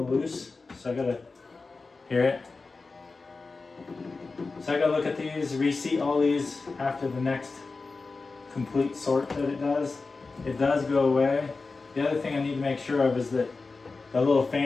loose, so I gotta hear it. So I gotta look at these, reseat all these after the next complete sort that it does. It does go away. The other thing I need to make sure of is that the little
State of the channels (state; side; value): quieter; right; 4.0 dB